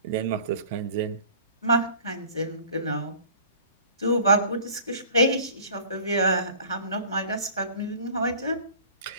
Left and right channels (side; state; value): both; inverted; correlation -0.47